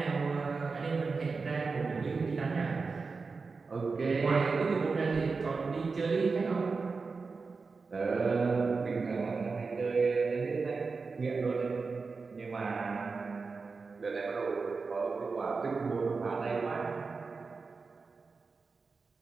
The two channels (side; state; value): left; quieter; 4.5 dB